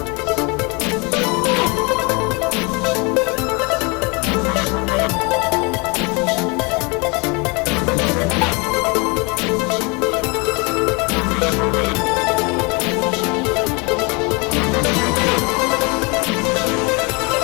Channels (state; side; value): quieter; right; 29.2 dB